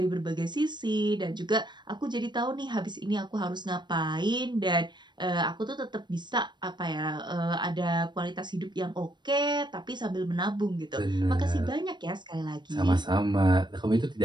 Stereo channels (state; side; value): late; left; 0.22 ms